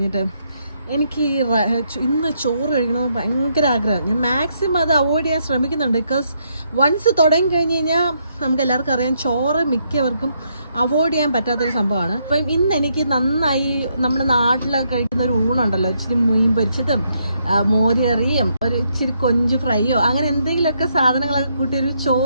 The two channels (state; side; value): inverted; both; correlation -0.76